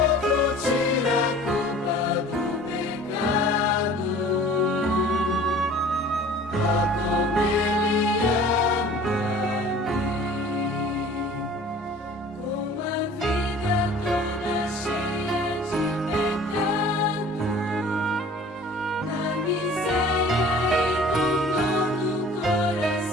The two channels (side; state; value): both; normal; correlation 0.47